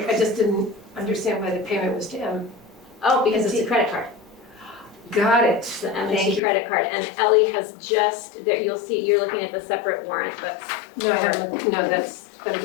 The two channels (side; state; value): right; drops out; at 6.4 s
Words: I just didn't understand why the payment was to M. oh, because it's a credit card. Got it. It's the Thank M&T you. credit card, and Ellie has just, there, you'll see, you're looking at the separate warrant, but, No, I haven't, no, I'm